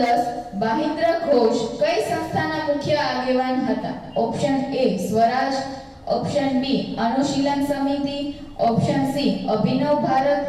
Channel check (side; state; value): both; identical; correlation 1.00